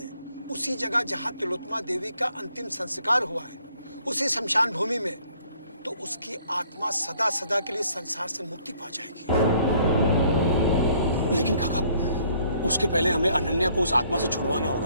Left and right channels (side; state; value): both; inverted; correlation -0.63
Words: उसी जगह जहां तिलोत्तमा देवी का अंतिम संस्कार हुआ है, उसी शमशान भूमि में, तो उसकी आत्मा सदा सदा के लिए संसार से मुक्ति पा जाएगी। लेकिन काका, उसके पहले हमें अनन्या को उस आत्मा से छुड़वाना